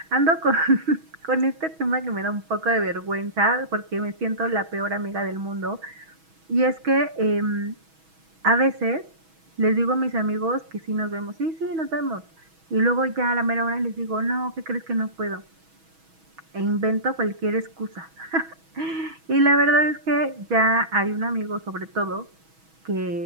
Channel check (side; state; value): left; late; 6.2 ms